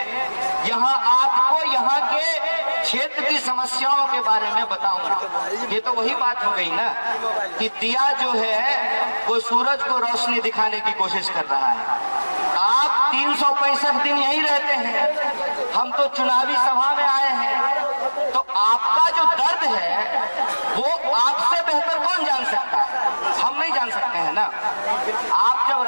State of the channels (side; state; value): both; inverted; correlation -1.00